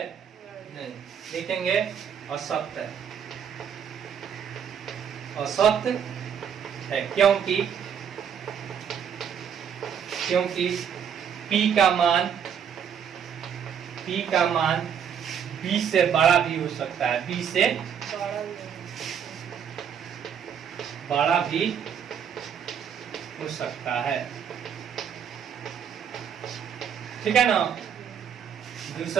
नहीं, लिखेंगे असत्य है। असत्य है क्योंकि P का मान B से बड़ा भी हो सकता है, B से बड़ा भी हो सकता है, ठीक है ना।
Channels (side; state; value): left; quieter; 8.0 dB